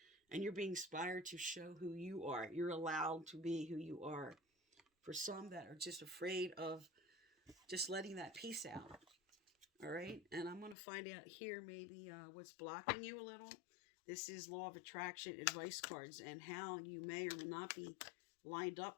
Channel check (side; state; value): right; drops out; at 10.8 s